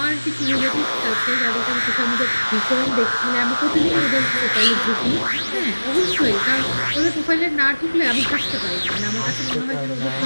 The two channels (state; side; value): inverted; both; correlation -1.00